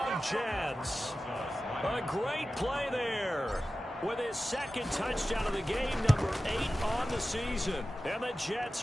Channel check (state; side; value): normal; both; correlation 0.94